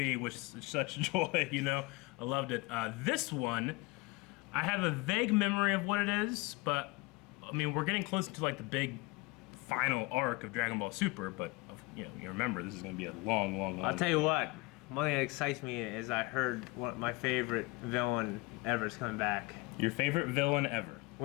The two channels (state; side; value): quieter; right; 24.1 dB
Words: with such joy, you know? I loved it. This one, I have a vague memory of what it is, but, I mean, we're getting close to, like, the big final arc of Dragon Ball Super, but, you know, you remember, this is going to be a long I'll tell you what. One thing that excites me is I heard my favorite villain ever is coming back. Your favorite villain ever?